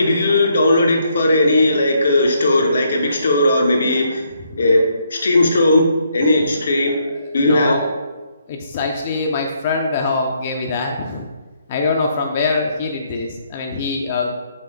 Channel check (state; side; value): inverted; both; correlation -0.73